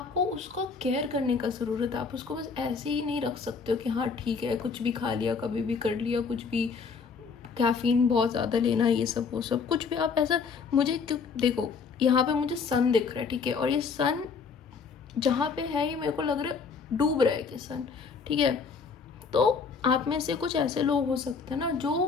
उसका केयर करने का ज़रूरत है। आप उसको बस ऐसे ही नहीं रख सकते हो कि हाँ ठीक है, कुछ भी खा लिया, कभी भी कर लिया, कुछ भी कैफ़ीन बहुत ज़्यादा लेना, ये सब वो सब कुछ भी आप ऐसा। मुझे देखो यहाँ पे मुझे सन दिख रहा है, ठीक है, और ये सन जहाँ पे है ये मेरे को लग रहा है डूब रहा है कि सन, ठीक है। तो आप में से कुछ ऐसे लोग हो सकते हैं ना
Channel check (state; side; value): quieter; right; 5.3 dB